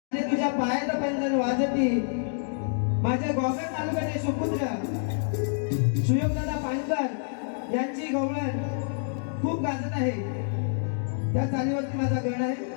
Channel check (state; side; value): silent; right; digital silence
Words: तुझ्या पायाचा पंजन वाजती माझ्या गोगल तालुक्याचे सुपुत्र सुयोगदादा पाणकर यांची गवळण खूप गाजत आहे। त्या चालीवरती माझा गण आहे,